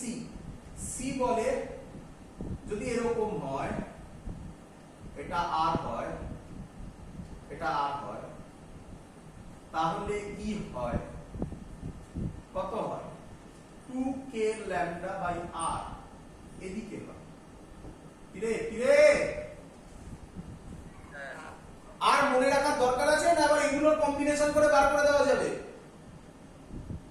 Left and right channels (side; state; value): both; identical; correlation 1.00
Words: c বলে যদি এরকম হয়, এটা r হয়, তাহলে ই হয় কত হয় 2k lambda by r, এদিকে হয়। কিরে আর মনে রাখার দরকার আছে না? আবার এগুলোর কম্বিনেশন করে বার করে দেওয়া যাবে।